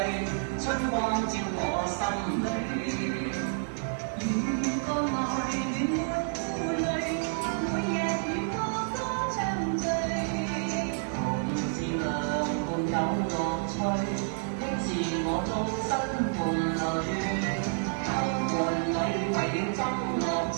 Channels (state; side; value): silent; left; digital silence